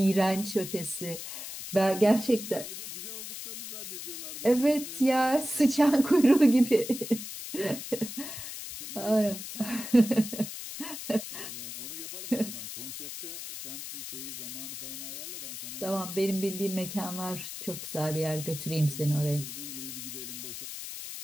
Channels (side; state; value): left; noise; hiss, 9 dB below the sound